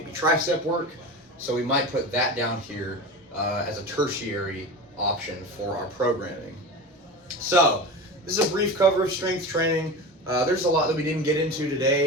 tricep work. So we might put that down here as a tertiary option for our programming. So this is a brief cover of strength training. There's a lot that we didn't get into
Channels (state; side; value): normal; both; correlation 0.28